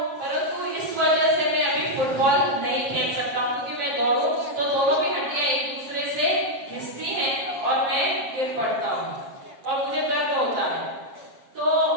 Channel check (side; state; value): left; late; 7.4 ms